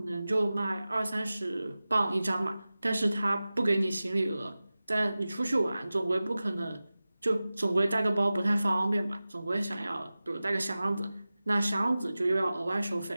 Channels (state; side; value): inverted; both; correlation -0.96